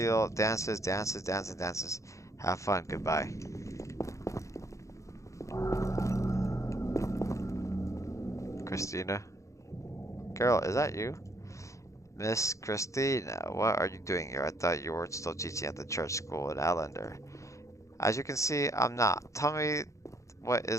dances, dances, dances, dances. Have fun. Goodbye. Christina? Girl, is that you? Miss Christina, what are you doing here? I thought you were still teaching at the church school in Allender. As you can see, I'm not. Tell me What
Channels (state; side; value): late; right; 0.15 ms